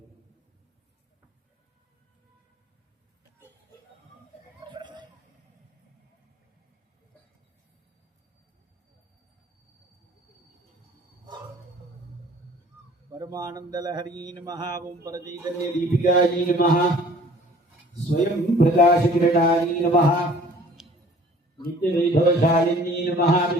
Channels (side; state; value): both; normal; correlation 0.51